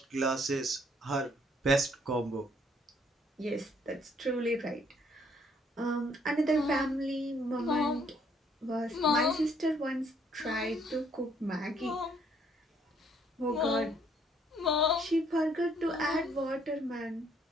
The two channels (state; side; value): normal; both; correlation 0.66